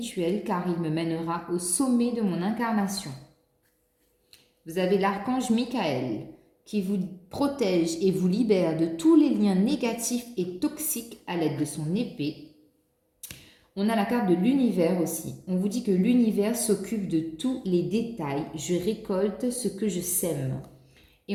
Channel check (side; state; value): both; identical; correlation 1.00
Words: car il me mènera au sommet de mon incarnation. Vous avez l'archange Michael qui vous protège et vous libère de tous les liens négatifs et toxiques à l'aide de son épée. On a la carte de l'univers aussi. On vous dit que l'univers s'occupe de tous les détails. Je récolte ce que je sème.